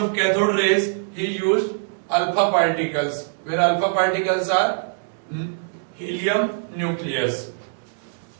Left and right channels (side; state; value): left; silent; digital silence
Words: cathode rays he used alpha particles, where alpha particles are helium nucleus.